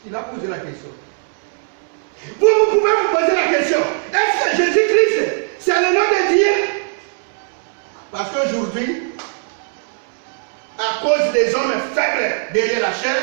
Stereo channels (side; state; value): left; silent; 57 dB below the other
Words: Il a posé la question. Vous pouvez vous poser la question. Est-ce que Jésus-Christ, c'est le nom de Dieu? Parce qu'aujourd'hui, à cause des hommes faibles derrière la chair,